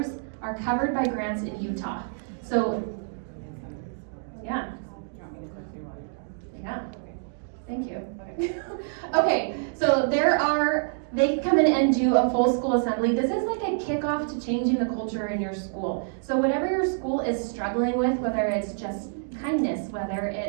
are covered by grants in Utah. So, yeah. Yeah. Thank you. Okay, so there are they can come in and do a full school assembly. This is like a kickoff to changing the culture in your school. So whatever your school is struggling with, whether it's just kindness, whether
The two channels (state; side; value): silent; left; digital silence